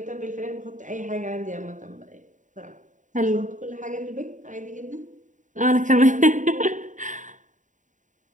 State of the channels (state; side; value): late; left; 0.36 ms